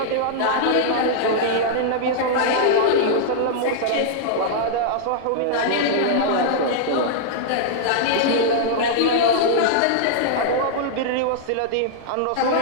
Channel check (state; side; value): different; both; correlation -0.02